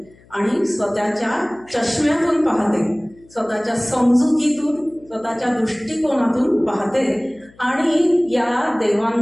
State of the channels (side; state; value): left; noise; hum, 27 dB below the sound